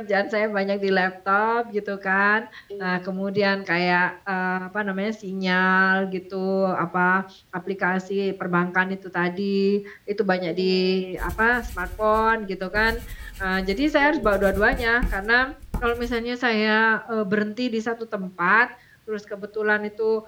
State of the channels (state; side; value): identical; both; correlation 1.00